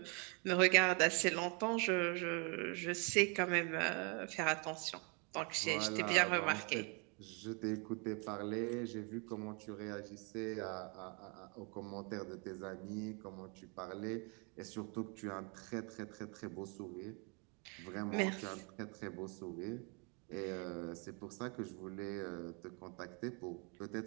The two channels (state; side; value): quieter; left; 33.7 dB